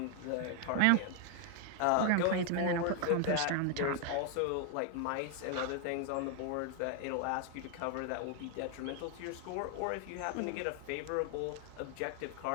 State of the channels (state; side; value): different; both; correlation 0.00